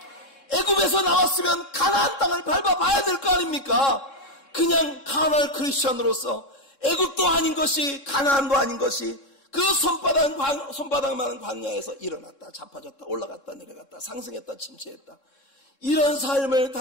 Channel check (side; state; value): right; late; 3.7 ms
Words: 애굽에서 나왔으면 가나안 땅을 밟아봐야 될 거 아닙니까? 그냥 카날 크리스천으로서 애굽도 아닌 것이 가나안도 아닌 것이 그 손바닥만한 광야에서 일어났다 자빠졌다 올라갔다 내려갔다 상승했다 침체했다, 이런 삶을